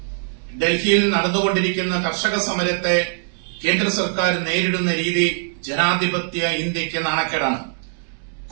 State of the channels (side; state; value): left; silent; 63 dB below the other